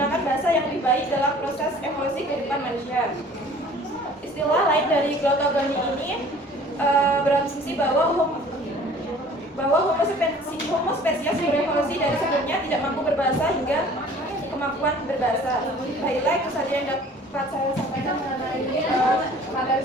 bahasa yang lebih baik dalam proses evolusi kehidupan manusia. Istilah lain dari glottogoni ini berasumsi bahwa Homo spesies berevolusi dari sebelumnya tidak mampu berbahasa hingga kemampuan berbahasa. Baiklah, itu saja yang dapat saya sampaikan mengenai materi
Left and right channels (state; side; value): normal; both; correlation 0.49